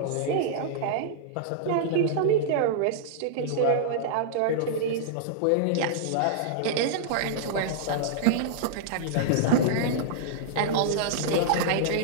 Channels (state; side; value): different; both; correlation -0.02